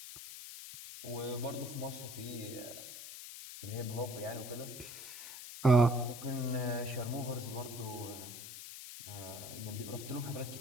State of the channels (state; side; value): noise; left; hiss, 10 dB below the sound